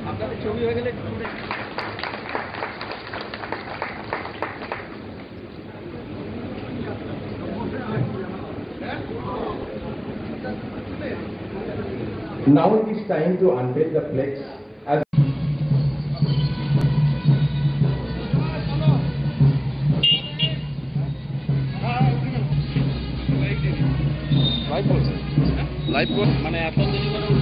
Now it is time to unveil the flex as live মানে এত দেরি করে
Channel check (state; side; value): identical; both; correlation 1.00